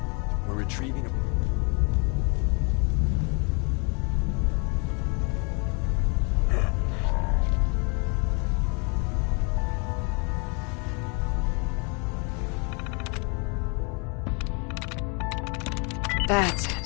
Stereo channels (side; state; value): right; quieter; 33.8 dB